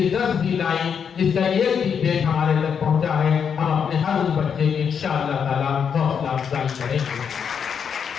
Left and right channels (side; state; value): right; quieter; 7.1 dB